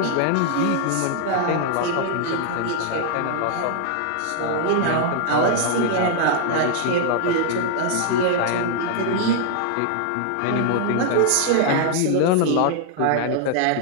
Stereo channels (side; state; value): both; different; correlation 0.00